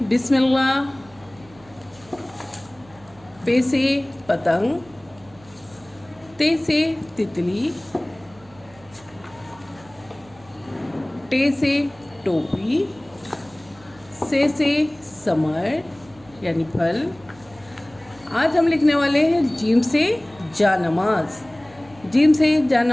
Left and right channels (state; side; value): noise; right; hum, 25 dB below the sound